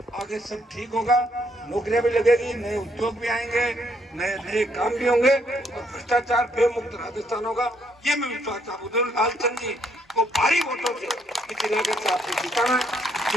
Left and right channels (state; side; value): normal; both; correlation 0.72